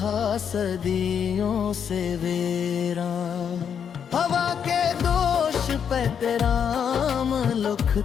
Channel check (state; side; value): quieter; right; 7.7 dB